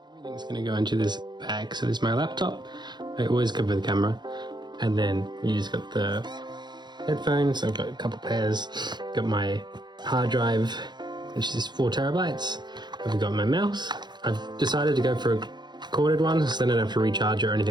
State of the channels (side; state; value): left; late; 0.21 ms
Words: Everything's going to go into this bag. So there's my laptop. I always cover the camera. And then you just got the headphones. I've got a couple pairs. Got my hard drive, which is 4 terabytes. I've got my mouse. I've decided to go for a corded one, so then I don't have to recharge it or